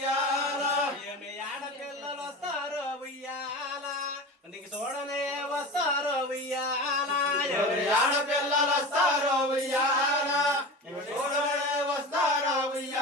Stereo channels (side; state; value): both; normal; correlation 0.30